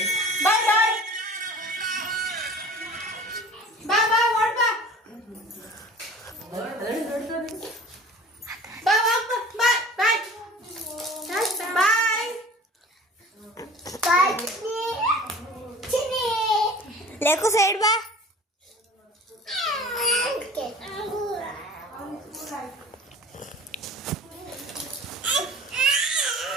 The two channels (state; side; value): normal; both; correlation 0.43